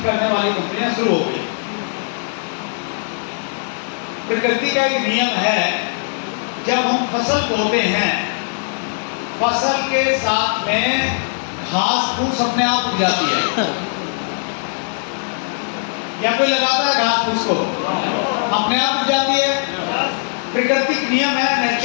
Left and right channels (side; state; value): right; silent; digital silence